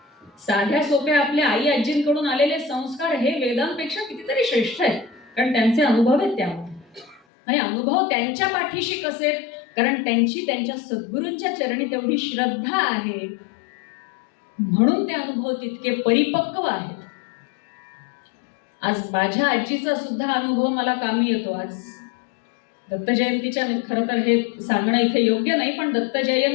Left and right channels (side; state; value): right; drops out; at 7.2 s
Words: साध्या सोप्या आपल्या आई आजींकडून आलेले संस्कार हे वेदांपेक्षा कितीतरी श्रेष्ठ आहेत, कारण त्यांचे अनुभव आहेत त्यामध्ये. आणि अनुभव त्यांच्या पाठीशी कसे, कारण त्यांची त्यांच्या सद्गुरूंच्या चरणी तेवढी श्रद्धा आहे, म्हणून ते अनुभव तितके परिपक्व आहेत. आज माझ्या आजीचा सुद्धा अनुभव मला कामी येतो. आज दत्त जयंतीच्या, खरं तर हे सांगणं इथे योग्य नाही, पण दत्त